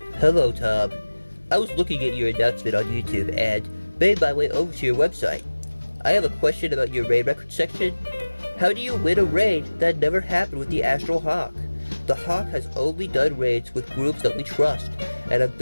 "Hello, Tom. I was looking at your announcement on YouTube and made my way over to your website. I have a question about your raid record section. How do you win a raid that never happened with the Astral Hawk? The Hawk has only done raids with groups that we trust and have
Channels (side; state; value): both; inverted; correlation -1.00